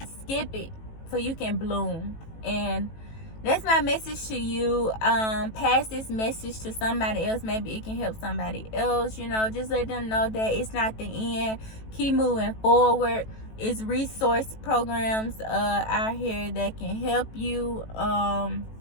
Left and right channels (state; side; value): late; right; 18 ms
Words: skip it so you can bloom. And that's my message to you. Pass this message to somebody else. Maybe it can help somebody else. You know, just let them know that it's not the end. Keep moving forward. It's resource programs out here that can help you. I'm